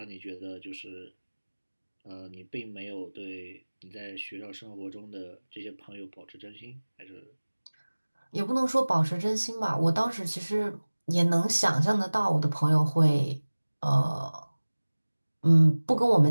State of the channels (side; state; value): both; inverted; correlation -1.00